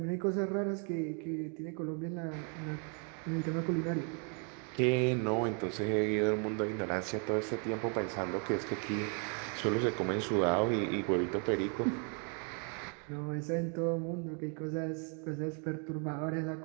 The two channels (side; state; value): left; quieter; 39.3 dB